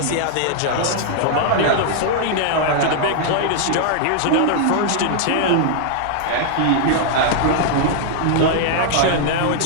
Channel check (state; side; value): different; both; correlation -0.01